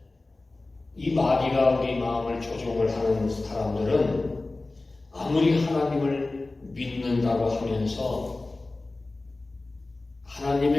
이 마귀가 우리 마음을 조종을 하는 사람들은 아무리 하나님을 믿는다고 하면서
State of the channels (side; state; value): right; quieter; 3.1 dB